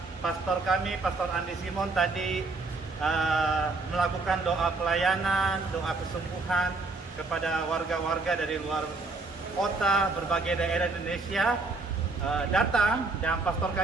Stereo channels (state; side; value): quieter; left; 3.6 dB